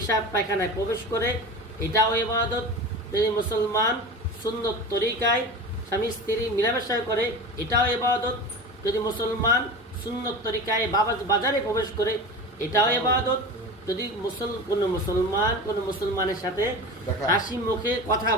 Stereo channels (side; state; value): both; normal; correlation 0.31